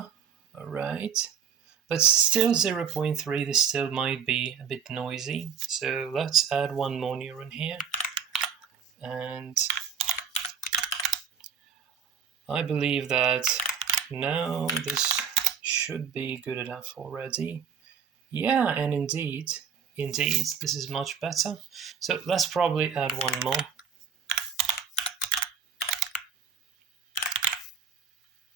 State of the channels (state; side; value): quieter; left; 7.1 dB